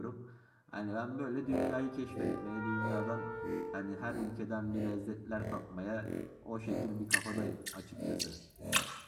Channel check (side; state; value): both; identical; correlation 1.00